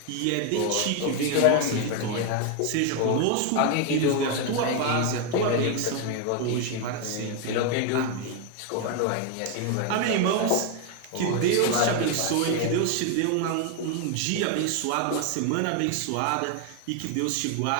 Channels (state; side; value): different; both; correlation 0.01